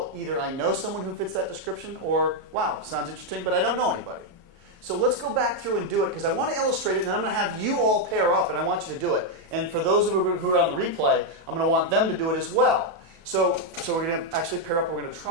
either I know someone who fits that description, or, wow, sounds interesting, but I don't know anybody. So let's go back through and do it, because I want to illustrate it, and then I'm going to have you all pair up, and I want you to do it. And for those of you who are on the replay, I'm going to want them to do it as well. So we're going to actually pair up, and we're going to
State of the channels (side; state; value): left; late; 35 ms